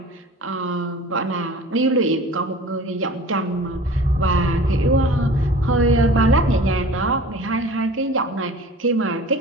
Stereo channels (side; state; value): both; normal; correlation 0.43